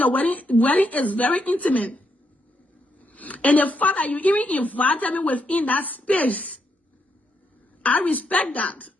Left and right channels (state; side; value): normal; both; correlation 0.79